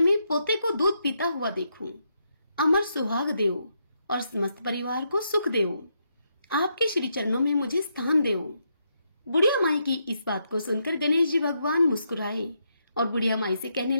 पोते को दूध पीता हुआ देखूं। अमर सुहाग देओ और समस्त परिवार को सुख देओ। आपके श्री चरणों में मुझे स्थान देओ। बुढ़िया माई की इस बात को सुनकर गणेश जी भगवान मुस्कुराए और बुढ़िया माई से कहने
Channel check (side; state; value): both; inverted; correlation -0.80